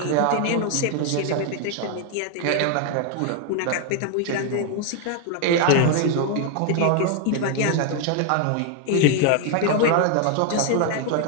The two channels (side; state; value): both; different; correlation 0.00